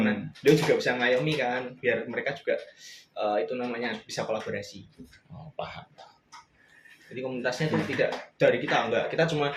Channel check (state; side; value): identical; both; correlation 1.00